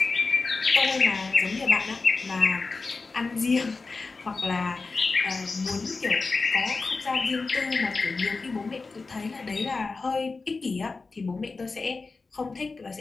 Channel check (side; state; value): right; quieter; 4.0 dB